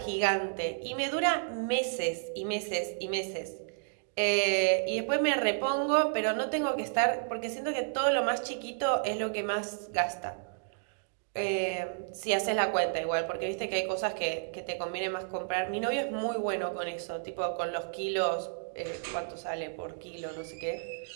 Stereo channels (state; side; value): silent; left; digital silence